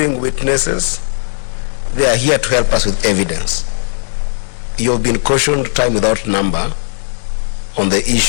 witnesses, they are here to help us with evidence. You've been cautioned time without number on the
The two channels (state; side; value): silent; right; digital silence